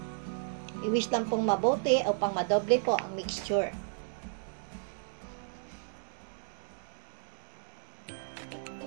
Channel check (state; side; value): silent; left; digital silence